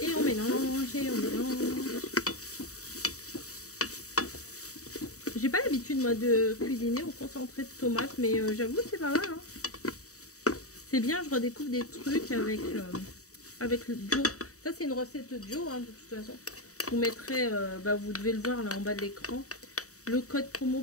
Et on mélange, et on mélange. J'ai pas l'habitude moi de cuisiner au concentré de tomate, mais j'avoue c'est pas mal. Hein. C'est bien, je redécouvre des trucs avec le Joe. Ça c'est une recette de Joe, hein, de toute façon. Vous mettrez, bah, vous devez le voir là en bas de l'écran, le code promo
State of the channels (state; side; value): late; right; 0.65 ms